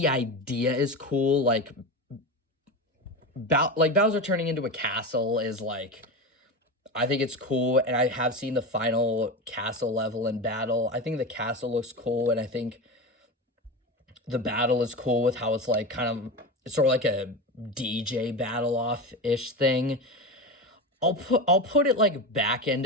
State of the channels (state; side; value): normal; both; correlation 0.22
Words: idea is cool, like Bowser turning into a castle is like, I think it's cool, and I have seen the final castle level in battle. I think the castle looks cool, and I think the battle is cool with how it's like kind of, it's sort of like a DJ battle off-ish thing. I'll put it like back end